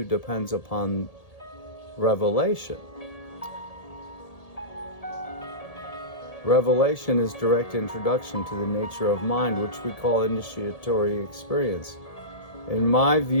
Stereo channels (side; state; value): right; late; 1.7 ms